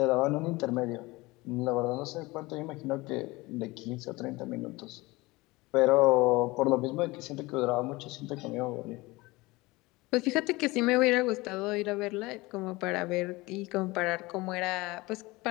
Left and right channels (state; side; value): quieter; right; 21.9 dB